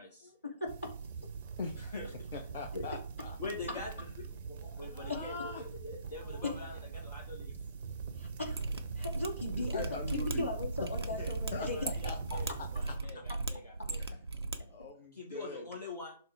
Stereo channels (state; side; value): inverted; both; correlation -0.63